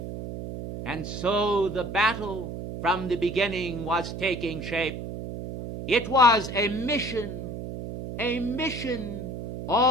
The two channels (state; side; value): noise; right; hum, 7 dB below the sound